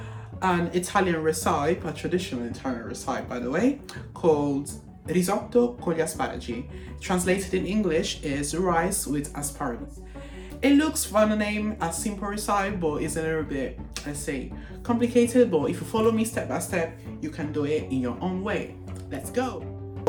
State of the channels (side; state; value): both; identical; correlation 1.00